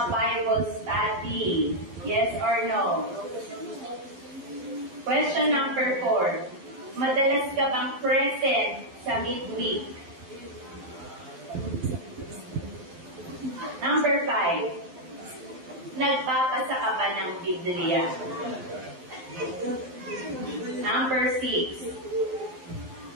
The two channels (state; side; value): late; left; 12 ms